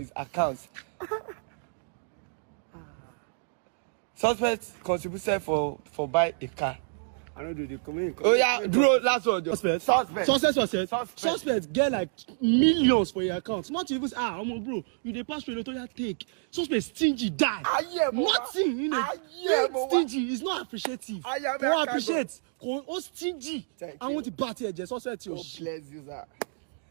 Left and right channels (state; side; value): silent; left; digital silence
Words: accounts. Suspect contributed for buy a car. I don't do the comment. Oh yeah, bro, last one. Suspect get like millions for your account. Not even bro, you dey pass through the take. Suspect stingy die. Nothing, stingy is not appreciative. Don't appreciate. Oh stingy. I want to party here. Suspect. God bless you, sir.